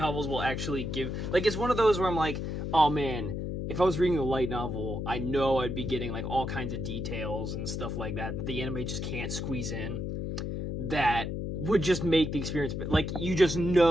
will actually give... Like, it's one of those where I'm like, oh man, if I was reading a light novel, I know I'd be getting like all kinds of details and stuff like that the anime just can't squeeze in. That would just make the experience... Like, you just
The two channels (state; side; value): noise; left; hum, 3 dB below the sound